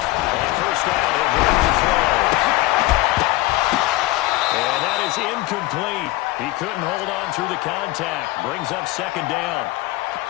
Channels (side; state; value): right; quieter; 18.4 dB